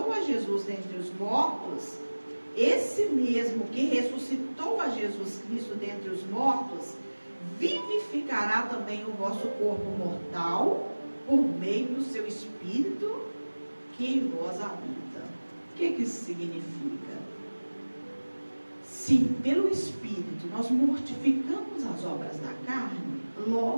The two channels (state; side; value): inverted; both; correlation -1.00